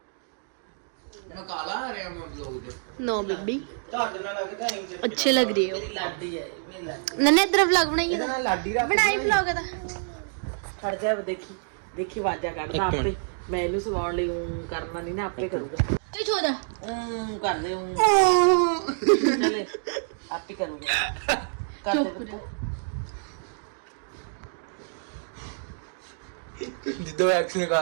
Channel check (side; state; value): left; silent; digital silence